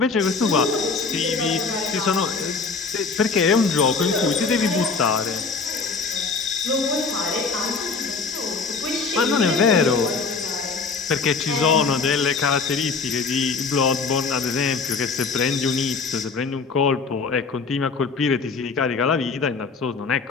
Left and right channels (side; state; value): right; quieter; 4.6 dB